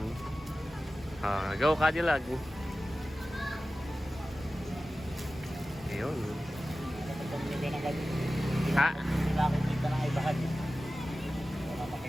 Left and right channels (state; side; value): normal; both; correlation 0.95